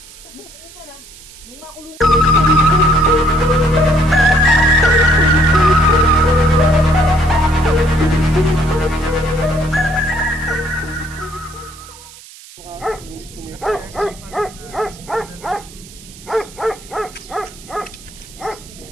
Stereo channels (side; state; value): right; noise; hiss, 20 dB below the sound